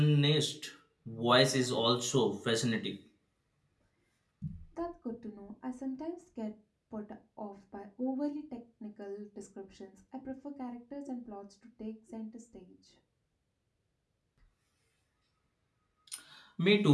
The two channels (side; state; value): both; identical; correlation 1.00